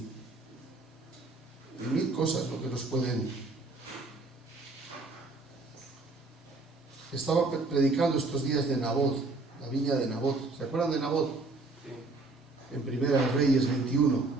1000 cosas lo que nos pueden... Estaba predicando estos días de Nabot, la viña de Nabot. ¿Se acuerdan de Nabot? Sí. En Primera de Reyes 21.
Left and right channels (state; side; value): quieter; left; 3.4 dB